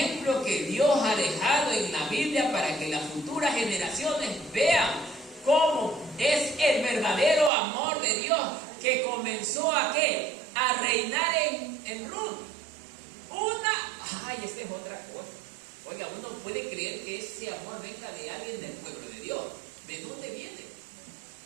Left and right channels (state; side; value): drops out; left; at 7.5 s